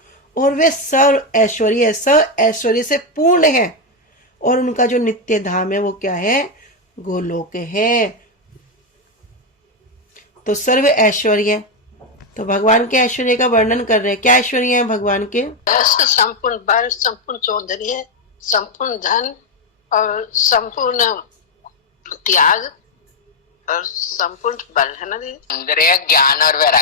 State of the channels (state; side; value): normal; both; correlation 0.05